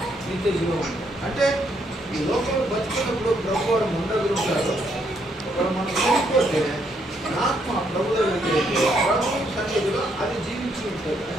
నిత్య జీవం. అంటే ఈ లోకంలో బతుకున్నప్పుడు ప్రభు వారు ఉండగలుగుతారు. ఒకవేళ మనం చనిపోతే ఆత్మ ప్రభులో వెళ్ళిపోతే ప్రభు సన్నిధిలో అది జీవించి ఉంటుంది.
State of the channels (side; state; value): both; normal; correlation 0.73